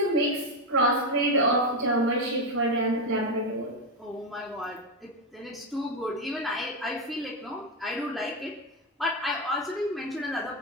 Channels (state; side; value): normal; both; correlation 0.09